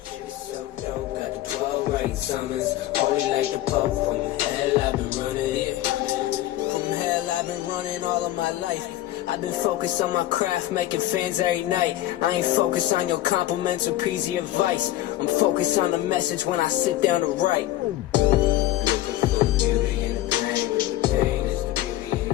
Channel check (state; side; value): quieter; right; 14.6 dB